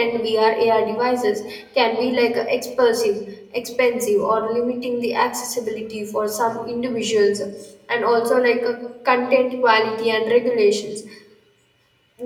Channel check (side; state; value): both; identical; correlation 1.00